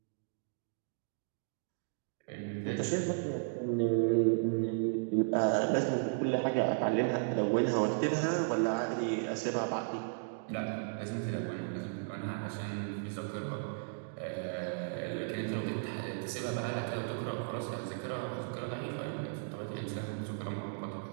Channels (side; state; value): left; silent; digital silence